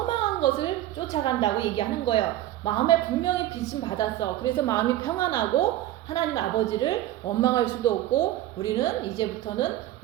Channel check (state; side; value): quieter; left; 14.0 dB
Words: 것을 쫓아간다고 얘기하는 거예요. 마음에 분명히 빚은 받았어. 그래서 마음이 평안하고 하나님 아버지를 원망할 수도 없고 우리는 이제부터는